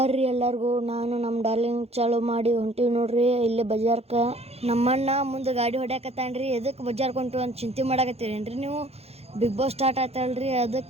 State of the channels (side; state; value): left; late; 0.30 ms